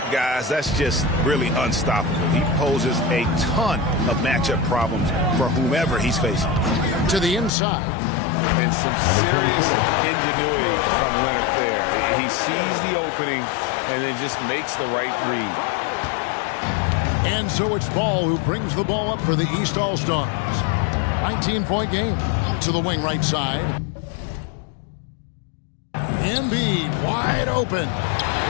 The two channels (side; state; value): right; drops out; at 7.5 s